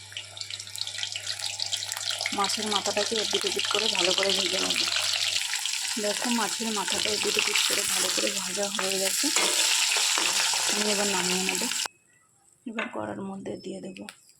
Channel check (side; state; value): both; identical; correlation 1.00